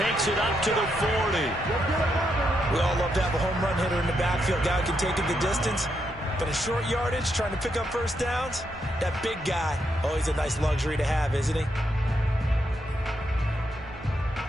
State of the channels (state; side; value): normal; both; correlation 0.80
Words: it up to the 40. We all love to have a home run hitter in the backfield. Guy who can take it the distance. But in short yardage, trying to pick up first downs, that big guy, always a nice luxury to have, isn't he?